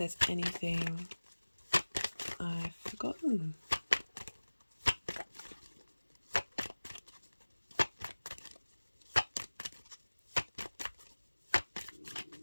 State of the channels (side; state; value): both; inverted; correlation -1.00